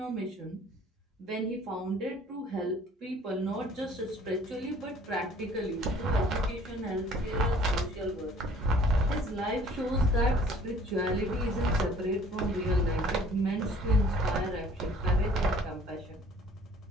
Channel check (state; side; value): normal; both; correlation 0.54